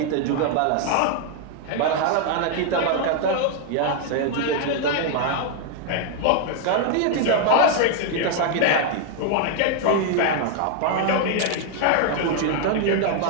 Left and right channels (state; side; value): different; both; correlation 0.00